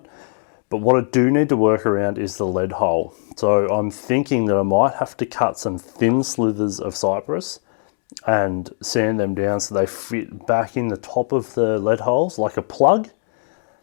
But what I do need to work around is the lead hole. So I'm thinking that I might have to cut some thin slithers of cypress and sand them down so they fit back in the top of the lead holes like a plug,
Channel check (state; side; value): silent; right; 60 dB below the other